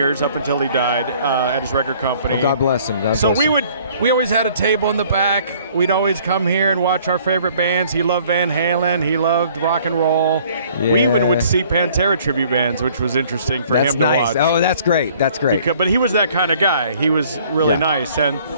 up until he died at his record company. Well, God bless him. We always had a table in the back. We'd always come here and watch our favorite bands. He loved Van Halen. He loved rock and roll. Yeah. We even would see Pantera tribute bands, which was interesting for him to watch. Oh, that's great. That's great. But he was that kind of guy. He was really nice. And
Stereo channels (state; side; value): inverted; both; correlation -0.57